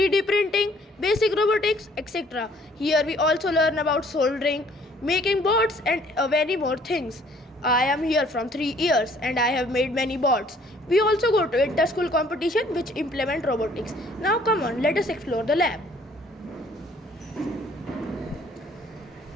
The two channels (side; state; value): both; normal; correlation 0.59